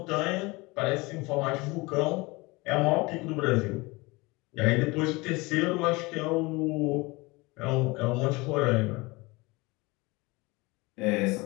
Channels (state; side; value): quieter; right; 24.1 dB